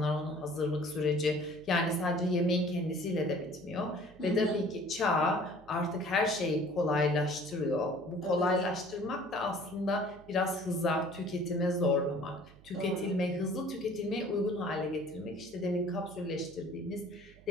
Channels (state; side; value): noise; right; hum, 23 dB below the sound